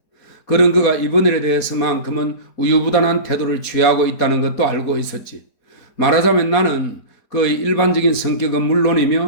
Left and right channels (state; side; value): late; right; 4.3 ms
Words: 그런 그가 이번 일에 대해서만큼은 우유부단한 태도를 취하고 있다는 것도 알고 있었지. 말하자면 나는 그의 일반적인 성격은